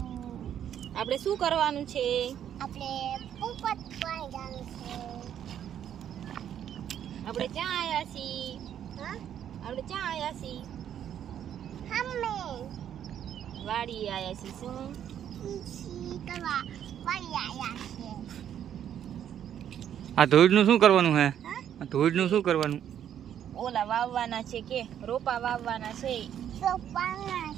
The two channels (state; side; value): quieter; left; 9.8 dB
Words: આપણે શું કરવાનું છે? આપણે પોપટ પાણી જવાનું છે. આપણે ક્યાં આયા છીએ? હા? આપણે ક્યાં આયા છીએ? હમે વાડી આયા છીએ. શું? ઈસી કરવા વાળી આયા છે. આ ધોઈડનું શું કરવાનું હે? હા? આ ધોઈડનું શું કરવાનું? ઓલા વાવવાના છે કે રોપા વાવવાના છે, તો પાણા